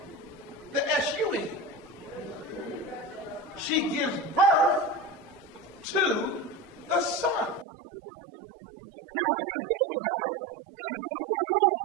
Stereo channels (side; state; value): left; drops out; at 7.7 s